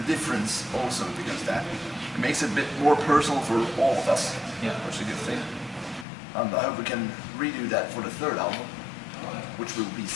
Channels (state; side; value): drops out; right; at 6.1 s